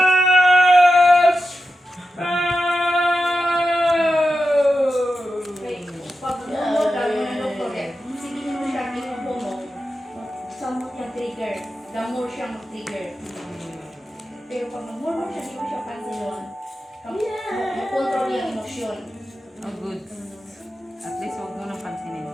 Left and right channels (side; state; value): both; normal; correlation 0.90